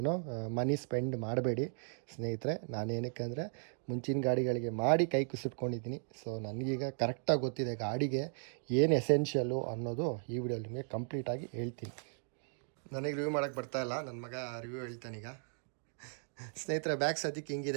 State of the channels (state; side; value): silent; left; 54 dB below the other